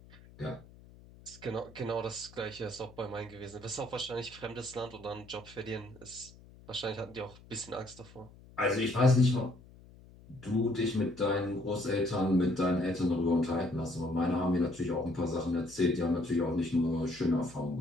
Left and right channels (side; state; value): left; noise; hum, 22 dB below the sound